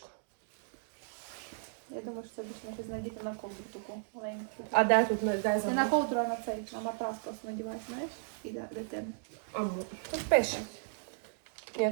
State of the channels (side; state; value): left; silent; digital silence